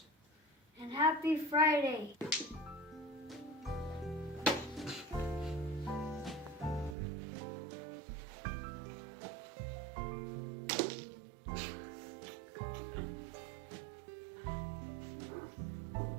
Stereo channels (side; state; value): left; drops out; at 7.0 s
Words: And happy Friday.